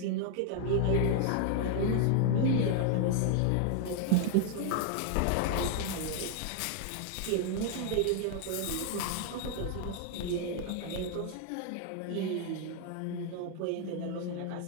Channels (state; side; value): different; both; correlation 0.00